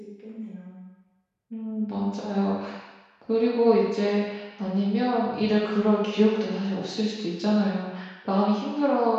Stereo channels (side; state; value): both; identical; correlation 1.00